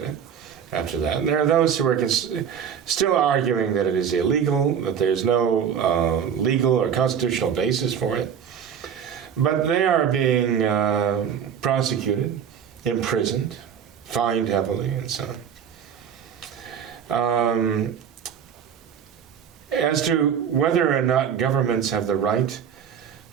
it after that. And there are those who are still arguing that it is illegal, that there's no legal or constitutional basis for it. But they are being prosecuted, imprisoned, fined heavily, and so on. As to whether or not governments have the right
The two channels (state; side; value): quieter; left; 8.1 dB